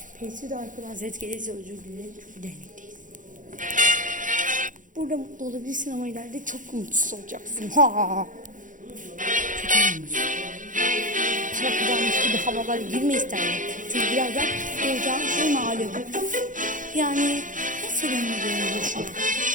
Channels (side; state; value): left; late; 0.38 ms